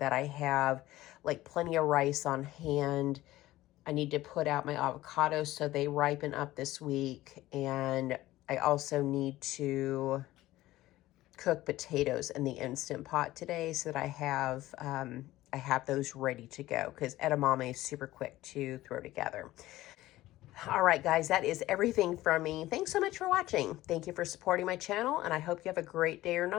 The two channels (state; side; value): quieter; right; 16.3 dB